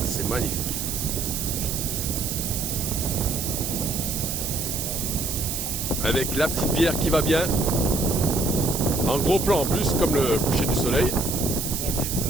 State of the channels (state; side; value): noise; right; hiss, 3 dB below the sound